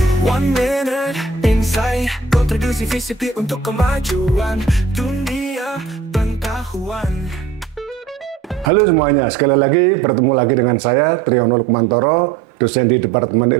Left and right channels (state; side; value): drops out; left; at 8.7 s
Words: 1 minute insight, kontribusi visitif untuk kemajuan dunia pengetahuan. Halo semuanya, sekali lagi bertemu lagi dengan saya Triyono Lukmantoro, dosen di Departemen